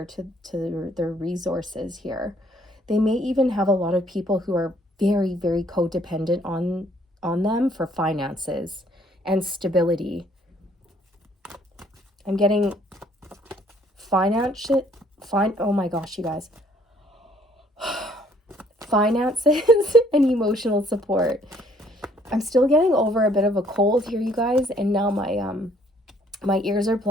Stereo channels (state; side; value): normal; both; correlation 0.63